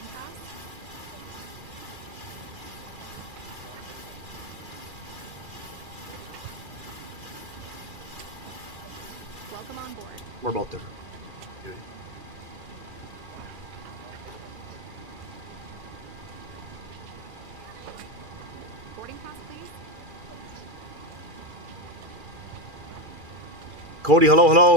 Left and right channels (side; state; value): left; late; 2.4 ms